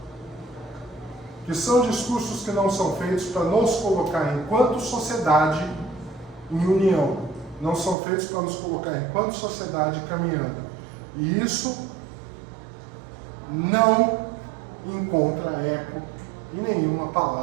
que que são discursos que não são feitos para nos colocar enquanto sociedade em união, não são feitos para nos colocar enquanto sociedade caminhando. E isso não encontra eco em nenhuma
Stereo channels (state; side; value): drops out; left; at 8.0 s